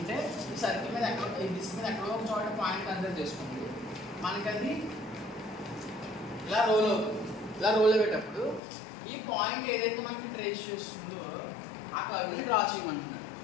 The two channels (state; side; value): drops out; right; at 8.6 s